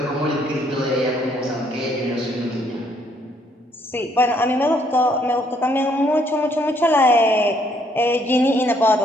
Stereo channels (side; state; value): both; normal; correlation 0.68